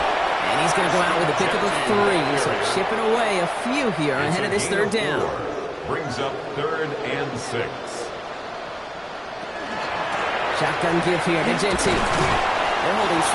And he's going to go out with a pickup of 3. So chipping away a few here ahead of this 3rd down. Brings up 3rd and 6. Shotgun give here to Genty. They're holding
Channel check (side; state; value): both; identical; correlation 1.00